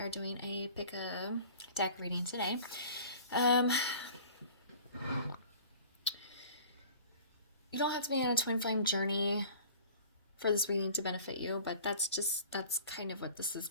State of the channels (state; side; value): inverted; both; correlation -0.45